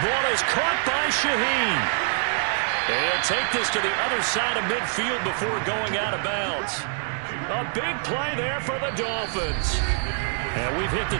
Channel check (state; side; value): silent; left; 57 dB below the other